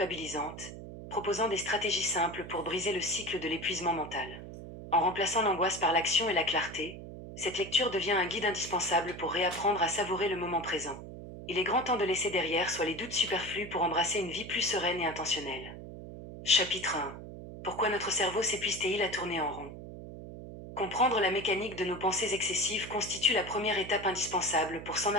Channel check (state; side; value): noise; right; hum, 12 dB below the sound